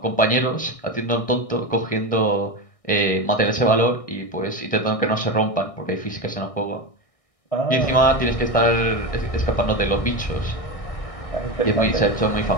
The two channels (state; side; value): late; right; 1.6 ms